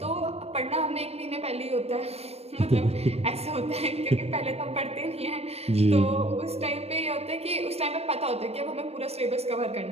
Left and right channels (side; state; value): left; late; 0.30 ms